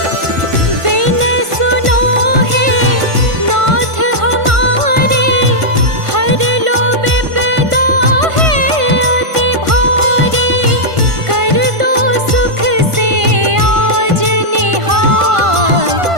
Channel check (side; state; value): left; late; 1.5 ms